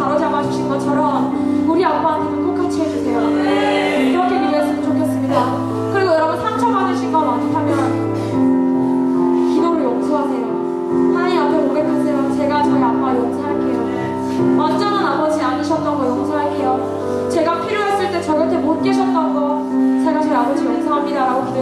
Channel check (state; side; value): identical; both; correlation 1.00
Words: 주신 것처럼 우리 아빠한테도 똑같이 해주세요. 그렇게 기도했으면 좋겠습니다. 그리고 여러분 상처받으신 거 많다면 기도를 용서하세요. 하나님 앞에 고백하세요. 제가 저희 아빠 용서할게요. 완전한 아버지 아니셨던 거 용서할게요. 제가 필요했을 때 저 곁에 못 계셨던 거 제가 저희 아버지 용서합니다 라고